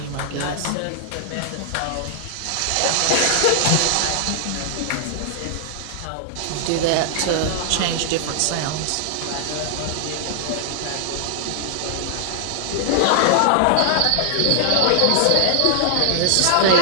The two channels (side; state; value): both; different; correlation -0.01